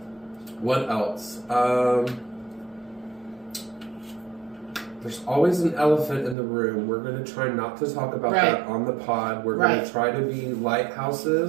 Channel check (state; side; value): drops out; left; at 6.4 s